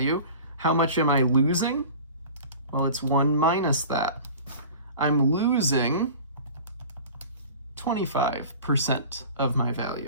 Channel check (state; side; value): inverted; both; correlation -0.40